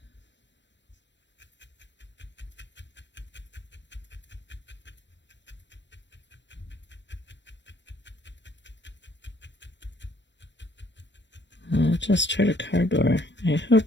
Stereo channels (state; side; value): late; right; 0.53 ms